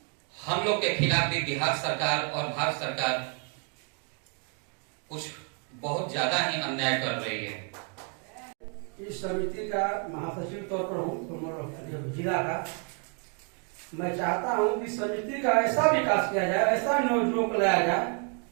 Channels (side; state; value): left; quieter; 40.0 dB